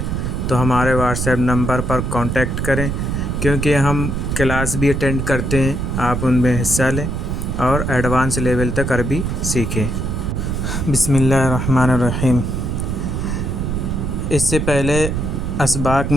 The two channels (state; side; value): noise; right; rumble, 2 dB below the sound